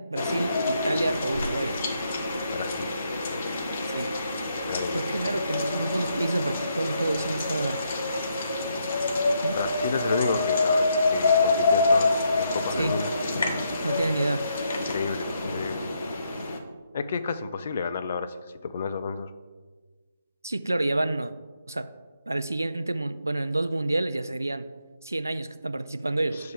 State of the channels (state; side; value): inverted; both; correlation -0.78